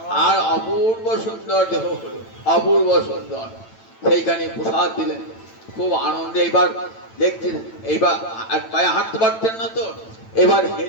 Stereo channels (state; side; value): late; right; 9.0 ms